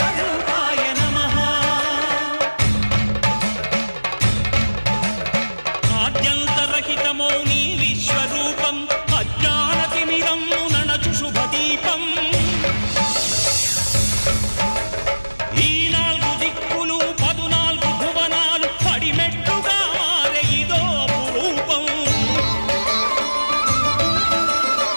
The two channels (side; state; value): both; inverted; correlation -1.00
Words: నమః ఆద్యంతరహితమో నీ విశ్వరూపం అజ్ఞానతిమిరం నణచు శుభదీపం ఈ 4 దిక్కులు 14 భువనాలు పడిమెట్టుగా మారే ఇదో అపురూపం